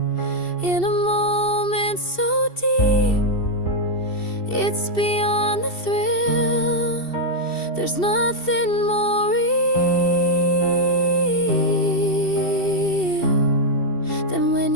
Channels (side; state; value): right; late; 2.7 ms